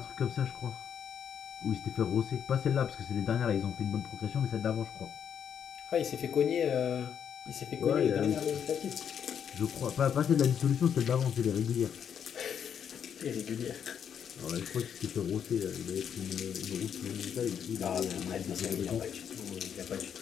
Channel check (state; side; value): quieter; right; 8.2 dB